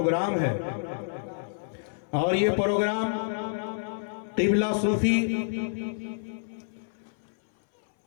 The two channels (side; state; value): right; silent; 59 dB below the other